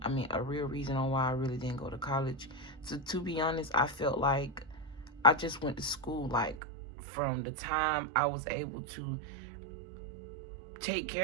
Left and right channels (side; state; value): left; drops out; at 6.6 s